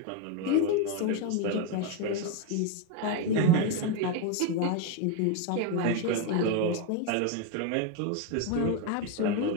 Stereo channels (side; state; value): both; different; correlation 0.02